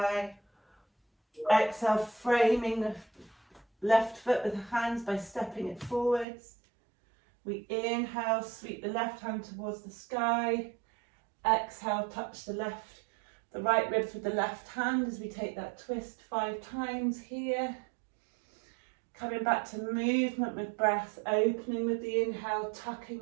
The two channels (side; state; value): left; drops out; at 6.2 s